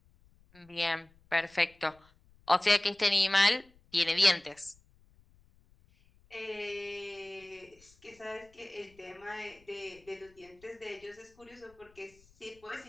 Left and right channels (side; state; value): left; noise; rumble, 30 dB below the sound